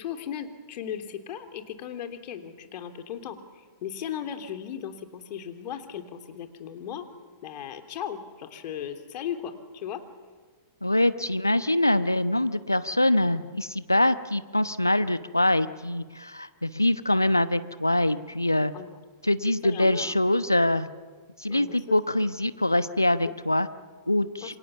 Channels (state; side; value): inverted; both; correlation -0.91